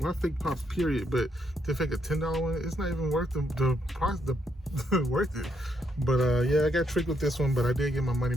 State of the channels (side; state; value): both; normal; correlation 0.76